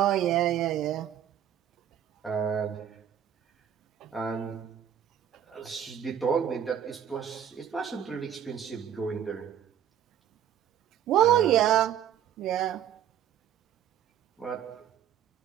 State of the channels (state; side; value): quieter; left; 9.7 dB